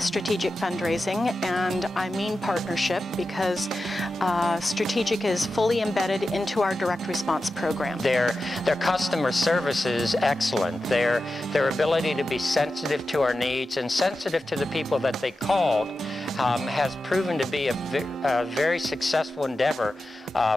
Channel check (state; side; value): normal; both; correlation 0.92